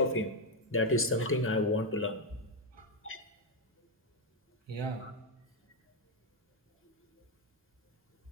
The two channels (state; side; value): normal; both; correlation 0.03